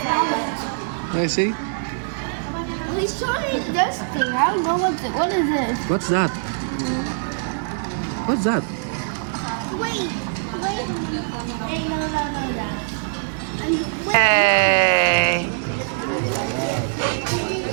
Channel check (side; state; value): left; silent; 64 dB below the other